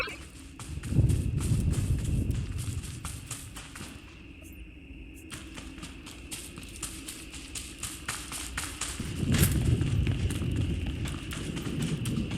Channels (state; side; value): identical; both; correlation 1.00